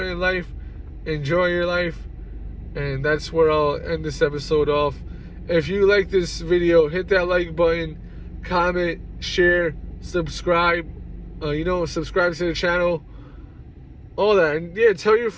in life, enjoy your life, and that's where I'll end this episode off. If you like this video, hit that like button, comment, share, subscribe, you know, subscribe to the channel, all that. And yeah, tell your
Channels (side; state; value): both; identical; correlation 1.00